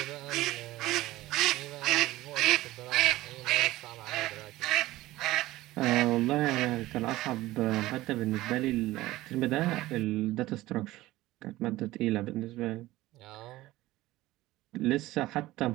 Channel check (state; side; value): quieter; left; 17.3 dB